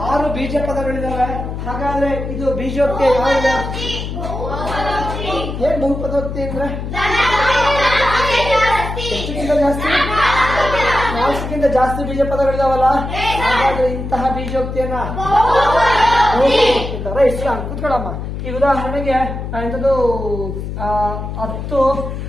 6 ಬೀಜ ಪದಗಳಿದಾವೆ. ಹಾಗಾದ್ರೆ ಇದು ಬೀಜೋಕ್ತಿ ಯಾವ್ದು? ಏನ್ ಬಹುಪದೋಕ್ತಿ ಅಂದ್ರೆ ಎಷ್ಟಕ್ಕಿಂತ ಜಾಸ್ತಿ? 4ಕ್ಕಿಂತ ಜಾಸ್ತಿ ಬೀಜ ಪದಗಳಿದಾವಲ್ಲ. ಹಾಗಾದ್ರೆ ಇಂತಹ ಬೀಜೋಕ್ತಿಯನ್ನ ರೈಟ್. ಕೂತ್ಕೊಳ್ಳಮ್ಮ. ಈ ಉದಾಹರಣೆಗೆ ಎಂಥದ್ದು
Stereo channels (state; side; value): noise; left; hum, 6 dB below the sound